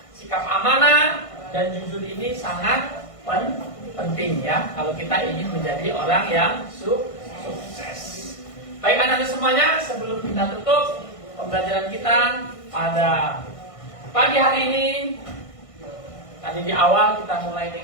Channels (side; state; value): right; late; 1.5 ms